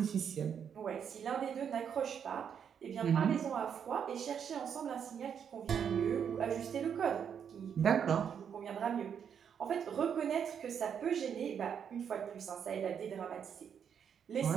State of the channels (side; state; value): left; quieter; 7.8 dB